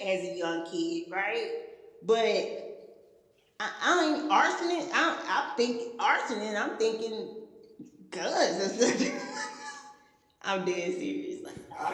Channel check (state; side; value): identical; both; correlation 1.00